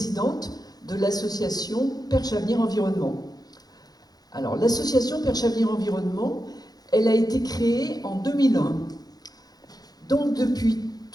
de l'association Perche Avenir Environnement. Alors, l'association Perche Avenir Environnement, elle a été créée en 2001. Donc, depuis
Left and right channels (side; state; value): right; late; 0.19 ms